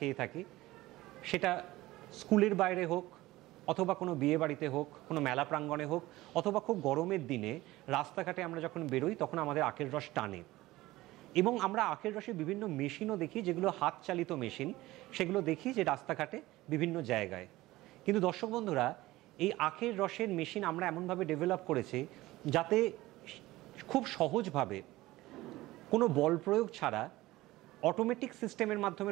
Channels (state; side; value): quieter; left; 18.0 dB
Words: থাকি, সেটা স্কুলের বাইরে হোক, অথবা কোনো বিয়ে বাড়িতে হোক, কোনো মেলা প্রাঙ্গণে হোক, অথবা খুব গরমের দিনে রাস্তাঘাটে আমরা যখন বেরোই তখন আমাদের আখের রস টানে। এবং আমরা আখের রসের বিভিন্ন মেশিনও দেখি, যেগুলো হাত চালিত মেশিন, সেগুলো দেখি যে রাস্তাঘাটে বিভিন্ন জায়গায়। কিন্তু দর্শক বন্ধুরা, এই আখের রসের মেশিন আমরা এমনভাবে ডেভেলপ করেছি যাতে খুব সহজভাবে কোনো বল প্রয়োগ ছাড়া অটোমেটিক সিস্টেমের মাধ্যমে